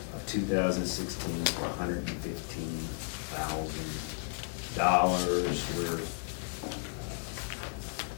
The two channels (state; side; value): silent; right; digital silence